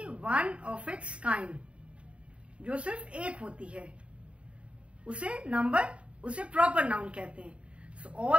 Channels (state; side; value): late; left; 0.060 ms